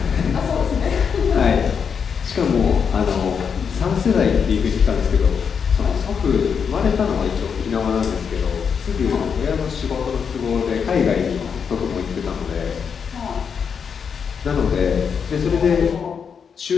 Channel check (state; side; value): quieter; right; 6.6 dB